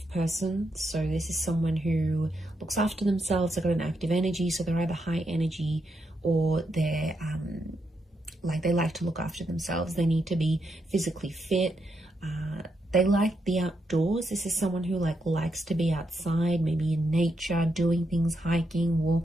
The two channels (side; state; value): both; normal; correlation 0.81